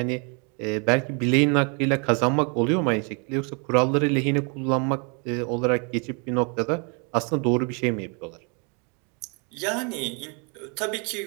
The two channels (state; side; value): quieter; left; 34.7 dB